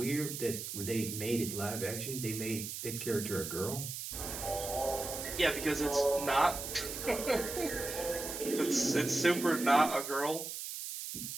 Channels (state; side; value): noise; right; hiss, 6 dB below the sound